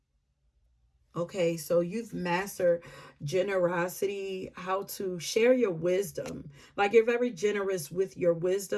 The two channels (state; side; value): identical; both; correlation 1.00